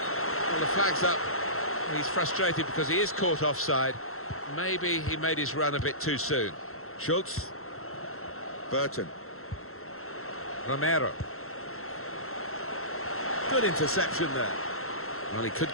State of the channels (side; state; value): right; late; 0.62 ms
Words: the flag's up. He's frustrated because he is caught offside. Maybe he made his run a bit too soon. Schultz. Burton. Romero. Good interception there. Well, he could